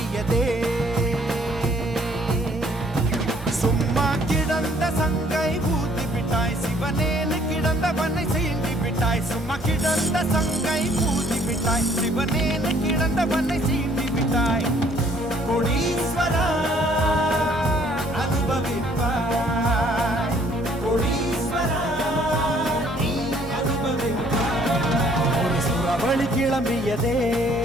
சும்மா கிடந்த சங்கை ஊதி விட்டாய் சிவனேனு கிடந்தவனை சீண்டி விட்டாய் சும்மா கிடந்த சங்கை ஊதி விட்டாய் சிவனேனு கிடந்தவனை சீண்டி விட்டாய் கோடீஸ்வரா அனுபவிப்பாய் கோடீஸ்வரா நீ அனுபவிப்பாய் ஒரு சுரவழி கிளம்பியதே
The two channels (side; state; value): both; normal; correlation 0.61